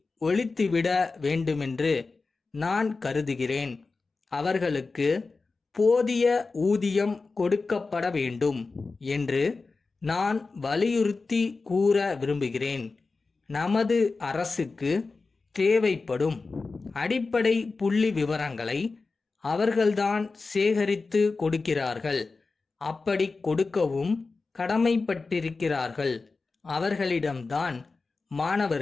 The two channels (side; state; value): right; quieter; 4.0 dB